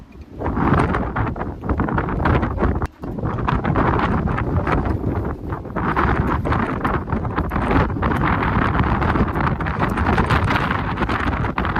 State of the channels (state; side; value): identical; both; correlation 1.00